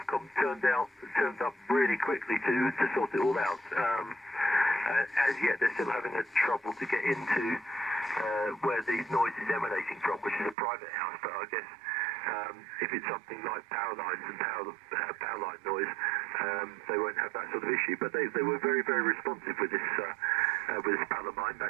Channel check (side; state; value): left; drops out; at 10.6 s